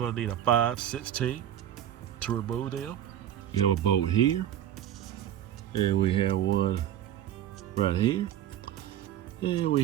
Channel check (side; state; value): left; quieter; 11.2 dB